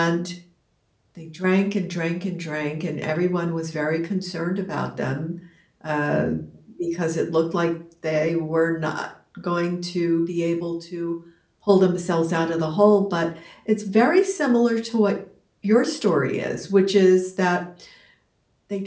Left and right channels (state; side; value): identical; both; correlation 1.00